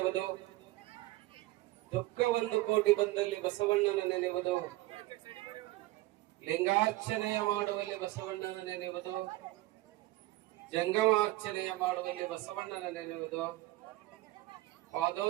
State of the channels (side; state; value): left; quieter; 18.4 dB